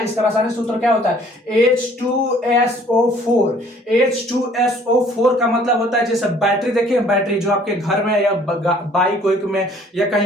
रासायनिक सूत्र क्या होता है, H2SO4। H2SO4 का मतलब होता है, जैसे बैटरी देखिए, बैटरी जो आपके घर में या बाइक वाइक में या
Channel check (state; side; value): normal; both; correlation 0.57